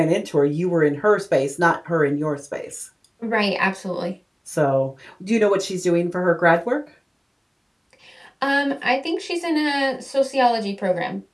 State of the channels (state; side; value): identical; both; correlation 1.00